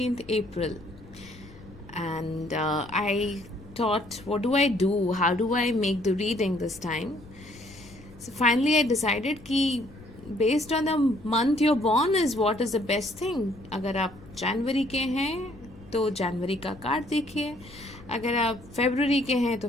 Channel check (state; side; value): noise; left; rumble, 20 dB below the sound